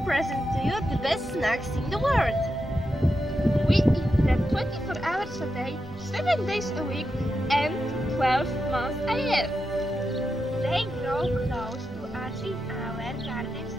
present to you the best snacks in the world. We eat them 24 hours a day, 7 days a week, and 12 months a year. They grow close to us in our gardens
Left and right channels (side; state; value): both; normal; correlation 0.87